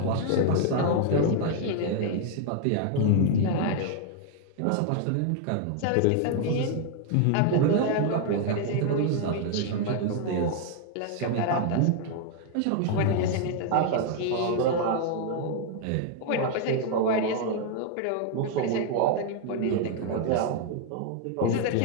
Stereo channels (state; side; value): different; both; correlation 0.00